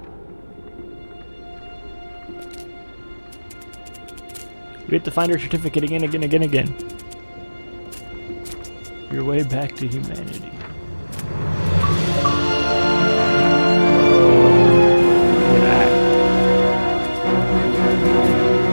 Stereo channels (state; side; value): inverted; both; correlation -1.00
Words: We have to find our certificate again. Your way back to humanity.